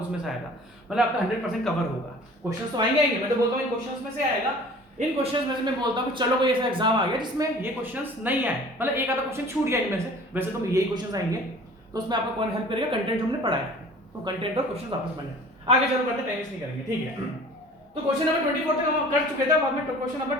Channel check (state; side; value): normal; both; correlation 0.46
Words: से आएगा, मतलब आपका 100% कवर होगा। क्वेश्चन तो आएंगे, मैं तो बोलता हूं इन क्वेश्चंस में से आएगा। इन क्वेश्चंस में से मैं बोलता हूं कि चलो कोई ऐसा एग्जाम आ गया जिसमें ये क्वेश्चंस नहीं आए, मतलब एक आधा क्वेश्चन छूट गया इनमें से, वैसे तो यही क्वेश्चंस आएंगे, तो उसमें आपको कौन हेल्प करेगा, कंटेंट जो हमने पढ़ा है। तो कंटेंट और क्वेश्चन आपस में आगे चलो करते, टाइम वेस्ट नहीं करेंगे, ठीक है। तो क्वेश्चन नंबर 24 तक हम कर चुके थे, बाद में क्वेश्चन नंबर